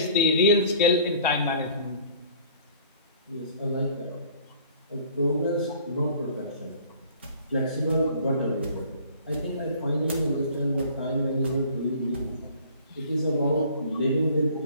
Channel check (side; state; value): both; inverted; correlation -0.50